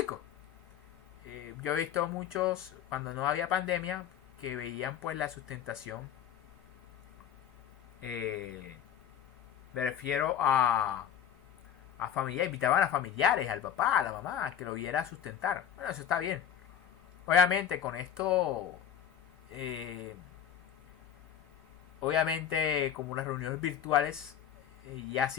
Yo he visto muchos cuando no había pandemia que veían pues la sustentación. Me refiero a familiares, invitaban a familiares, al papá, a la mamá, que lo viera sustentar. Bueno, eso está bien. Obviamente con esto, obviamente como las reuniones virtuales, y así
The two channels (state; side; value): quieter; right; 9.4 dB